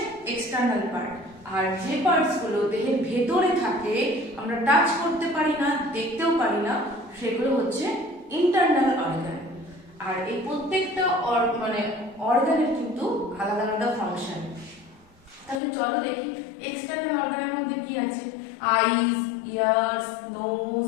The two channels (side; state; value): right; drops out; at 15.6 s